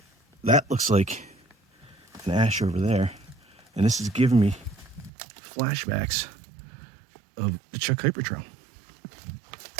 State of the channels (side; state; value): left; drops out; at 5.1 s